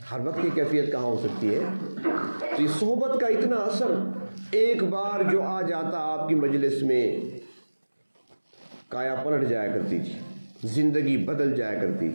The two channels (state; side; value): inverted; both; correlation -1.00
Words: ہر وقت کی کیفیت کہاں ہو سکتی ہے؟ تو یہ صحبت کا اتنا اثر، ایک بار جو آ جاتا آپ کی مجلس میں کایا پلٹ جایا کرتی تھی، زندگی بدل جایا کرتی